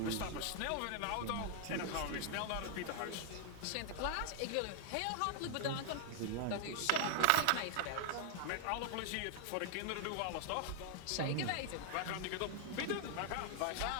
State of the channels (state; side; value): different; both; correlation 0.00